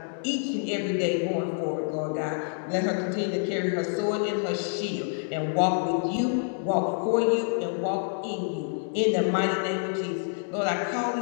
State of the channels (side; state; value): right; silent; digital silence